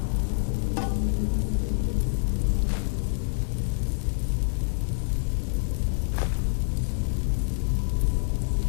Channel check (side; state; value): right; silent; 60 dB below the other